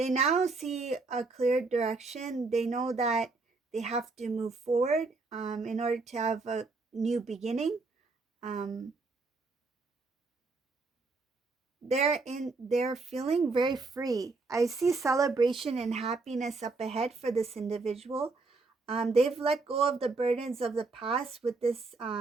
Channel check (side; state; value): left; quieter; 3.8 dB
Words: now see a clear direction. They know that they have to move forward in order to have a new beginning. They're feeling very free. I see celebration and happiness up ahead for this individual. They've let go of the burdens of the past with this